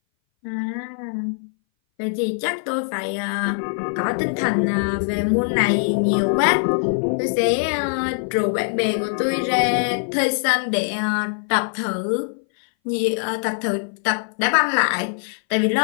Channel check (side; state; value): right; silent; 60 dB below the other